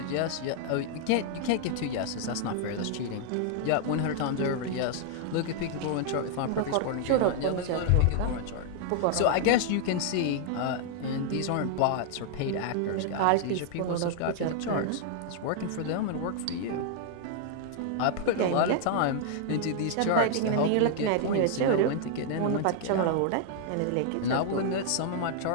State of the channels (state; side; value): different; both; correlation 0.00